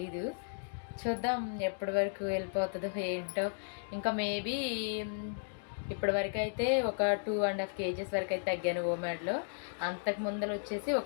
చూద్దాం ఎప్పటి వరకు వెళ్ళిపోతుందో ఏంటో. ఇంకా మేబీ ఇప్పటి వరకు అయితే ఒక 2.5 kgs వరకు అయితే తగ్గాను ఓమాడ్లో. అంతకు ముందర వచ్చేసి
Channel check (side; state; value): right; silent; digital silence